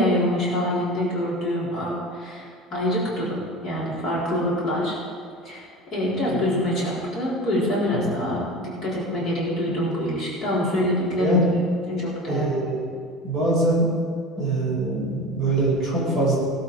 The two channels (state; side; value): normal; both; correlation 0.32